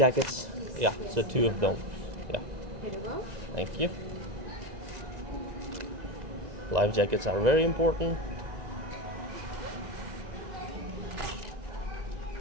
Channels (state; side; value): late; left; 2.0 ms